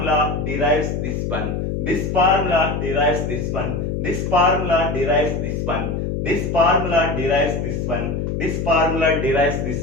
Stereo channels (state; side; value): noise; left; hum, 2 dB below the sound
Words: derives this one, this formula derives this one, this formula derives this one, this formula derives this one, this formula derives